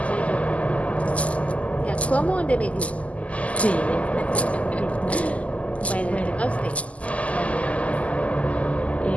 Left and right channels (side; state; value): right; late; 0.068 ms